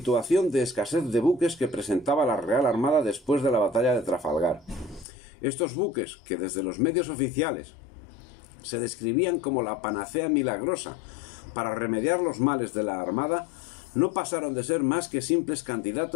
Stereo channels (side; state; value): right; drops out; at 5.1 s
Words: de escasez de buques que presentaba la Real Armada después de la batalla de Trafalgar. Estos buques, que desde los medios oficiales se describían como la panacea milagrosa para remediar los males de la Armada, no pasaron de ser más que simples